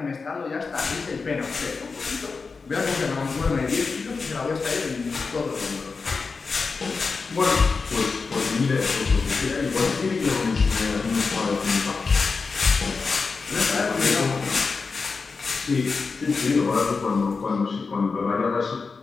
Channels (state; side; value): quieter; right; 4.6 dB